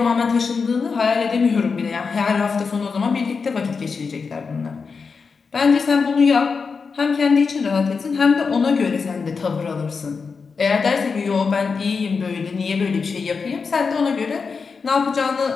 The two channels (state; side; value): quieter; right; 5.1 dB